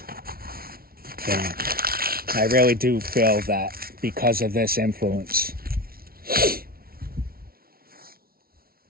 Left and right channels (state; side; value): late; left; 0.44 ms